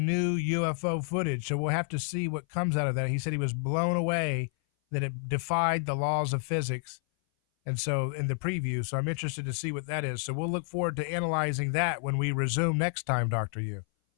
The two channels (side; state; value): right; silent; 57 dB below the other